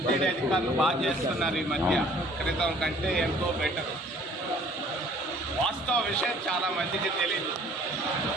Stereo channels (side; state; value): both; normal; correlation 0.55